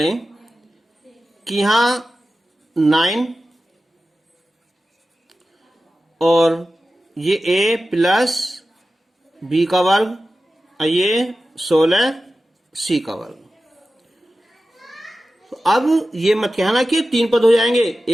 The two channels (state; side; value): normal; both; correlation 0.94